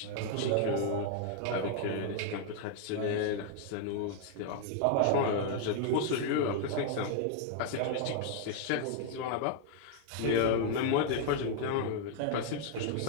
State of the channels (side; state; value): both; different; correlation 0.00